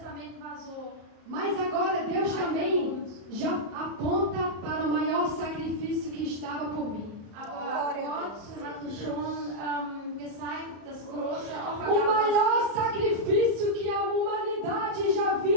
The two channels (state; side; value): late; left; 34 ms